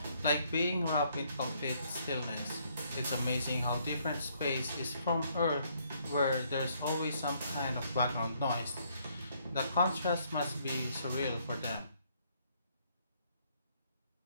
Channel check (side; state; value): both; inverted; correlation -0.69